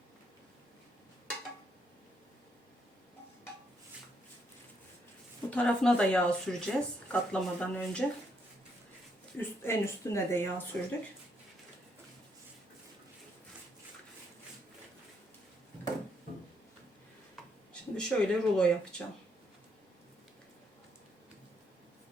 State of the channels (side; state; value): both; normal; correlation 0.74